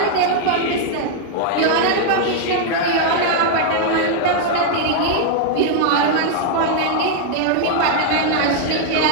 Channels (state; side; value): different; both; correlation 0.00